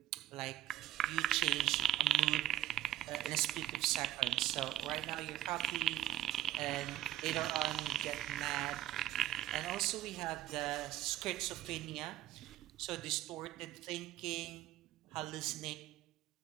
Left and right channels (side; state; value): left; quieter; 12.6 dB